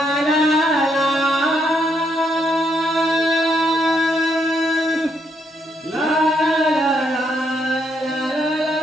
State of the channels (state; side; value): normal; both; correlation 0.75